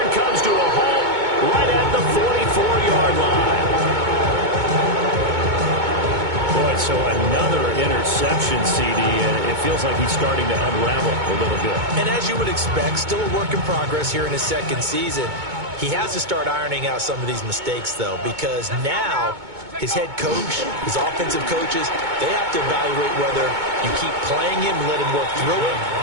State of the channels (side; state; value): left; late; 2.2 ms